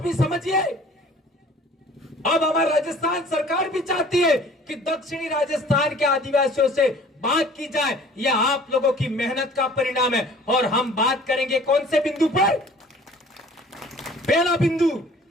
भी समझिए। अब हमारा राजस्थान सरकार भी चाहती है कि दक्षिणी राजस्थान के आदिवासियों से बात की जाए। यह आप लोगों की मेहनत का परिणाम है। और हम बात करेंगे कौन से बिंदु पर? पहला बिंदु,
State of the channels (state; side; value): normal; both; correlation 0.50